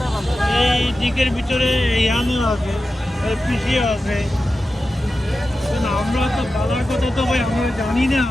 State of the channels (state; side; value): normal; both; correlation 0.93